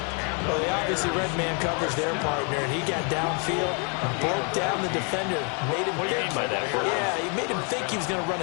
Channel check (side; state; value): right; quieter; 37.5 dB